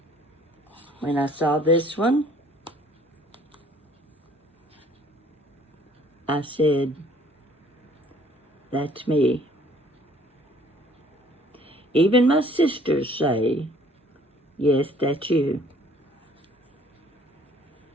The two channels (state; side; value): normal; both; correlation 0.57